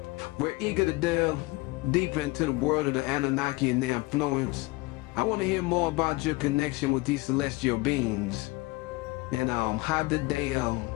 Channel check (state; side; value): quieter; right; 23.5 dB